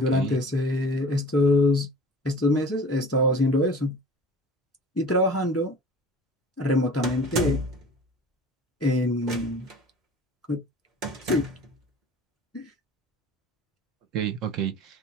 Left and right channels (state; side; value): normal; both; correlation 0.43